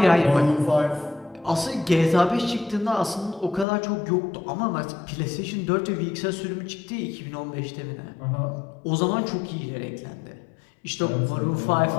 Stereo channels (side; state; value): right; drops out; at 3.7 s